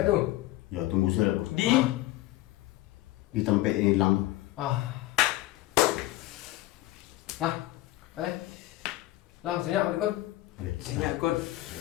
tu? Ya tunggu saya kau. Di tempat ini hilang. Lah, senyap aku kan? Senyap kot.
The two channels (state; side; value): quieter; right; 17.0 dB